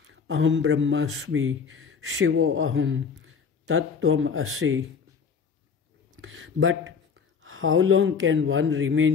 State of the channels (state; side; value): quieter; right; 5.9 dB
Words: Aham Brahmasmi, Shivo Aham, Tattvam Asi. But how long can one